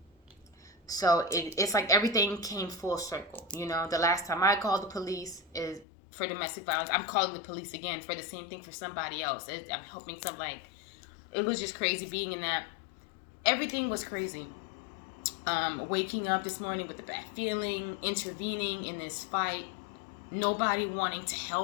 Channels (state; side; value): drops out; right; at 5.9 s